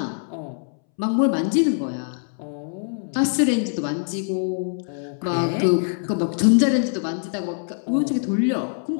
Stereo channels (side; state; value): right; silent; 63 dB below the other